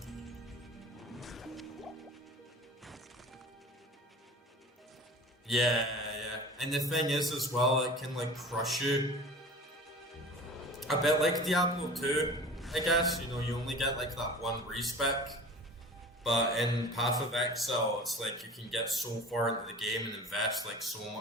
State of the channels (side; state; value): both; normal; correlation 0.40